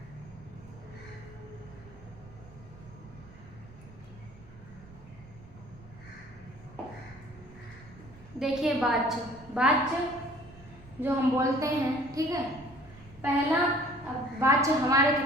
देखिए, वाच्य जो हम बोलते हैं, ठीक है। पहला, अब वाच्य हमारे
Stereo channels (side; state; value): right; noise; rumble, 20 dB below the sound